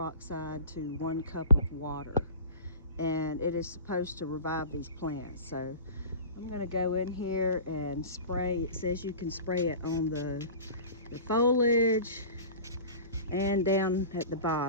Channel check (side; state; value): both; inverted; correlation -0.38